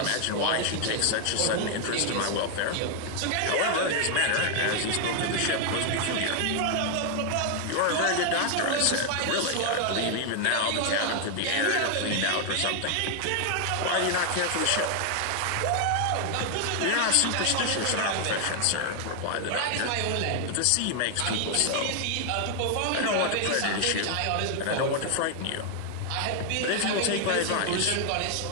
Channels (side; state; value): both; different; correlation 0.00